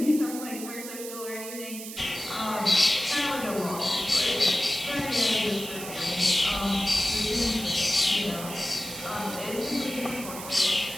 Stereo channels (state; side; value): noise; right; hiss, 10 dB below the sound